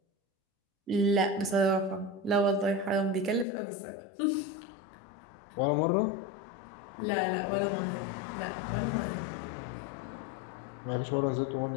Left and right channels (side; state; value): right; drops out; at 3.5 s